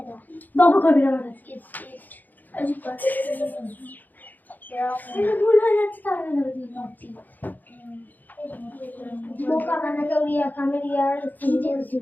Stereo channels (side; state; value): right; late; 0.085 ms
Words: বাবু করবি না আমার কাছে। ভুল হয়ে যাচ্ছে তাহলে বোকা বানাকে উড়িয়া খামের ইয়ার অন্য চুপ